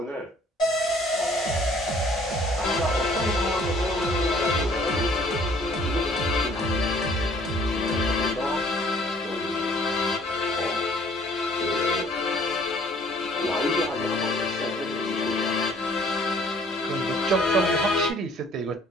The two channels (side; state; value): both; normal; correlation 0.57